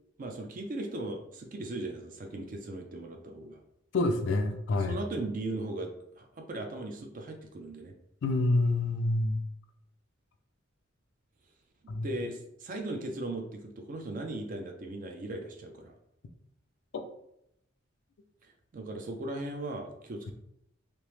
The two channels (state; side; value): normal; both; correlation 0.64